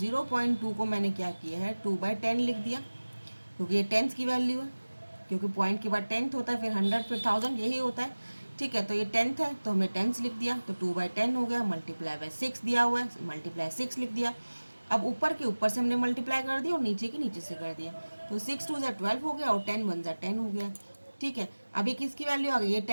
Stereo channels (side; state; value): both; inverted; correlation -1.00